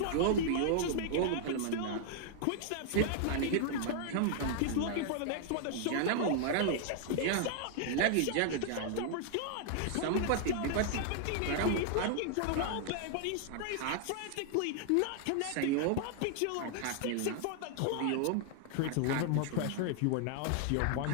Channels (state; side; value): different; both; correlation 0.00